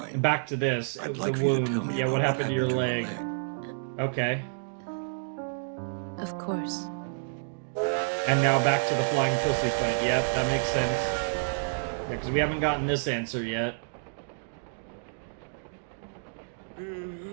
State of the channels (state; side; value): silent; left; digital silence